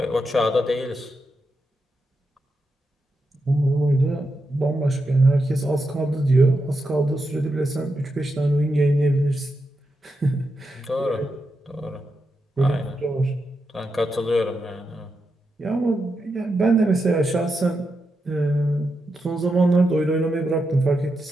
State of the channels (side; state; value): both; normal; correlation 0.86